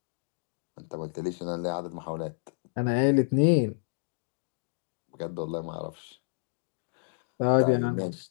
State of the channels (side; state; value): right; silent; digital silence